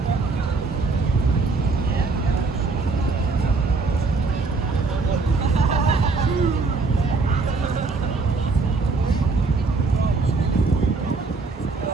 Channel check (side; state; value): left; quieter; 4.0 dB